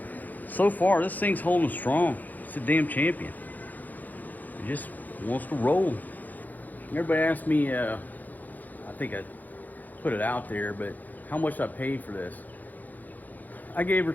so far this thing's holding strong. It's a damn champion. It just wants to roll. Everybody asked me, I think I put it out there, but how much I paid for this. I gave her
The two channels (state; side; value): late; right; 0.083 ms